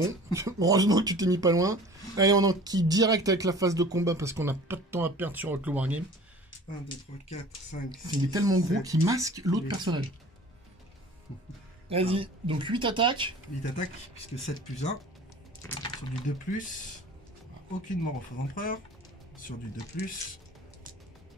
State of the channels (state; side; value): normal; both; correlation 0.45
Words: Heureusement que tu t'es mis pas loin. Allez, on enquille direct avec la phase de combat parce qu'on n'a pas de temps à perdre sur le Wargame. 1, 2, 3, 4, 5, 6, Il est tellement gros 7, qu'il masque l'autre huit. personnage. Vas-y, donc 8 attaques. 8 attaques, puisque 7 plus 1. Sur du 2+. Aucune mort au faux empereur. Sur du 2+.